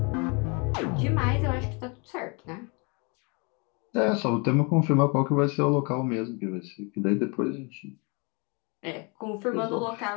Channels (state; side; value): quieter; right; 31.8 dB